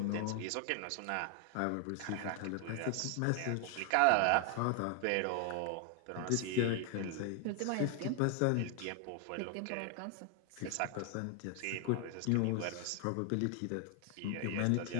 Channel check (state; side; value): different; both; correlation 0.00